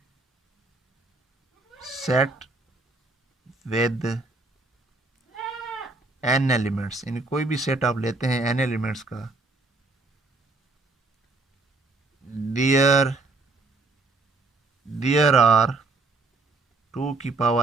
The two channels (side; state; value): left; quieter; 3.5 dB